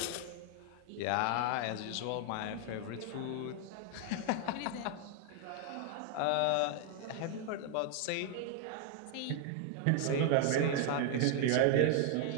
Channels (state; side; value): different; both; correlation 0.00